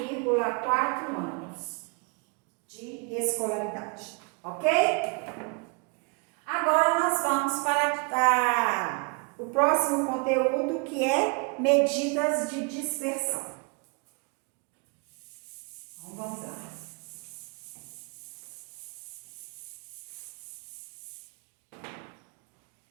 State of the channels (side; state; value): left; quieter; 33.4 dB